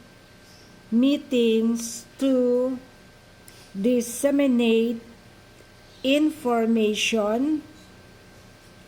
meetings to disseminate information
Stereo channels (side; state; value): both; identical; correlation 1.00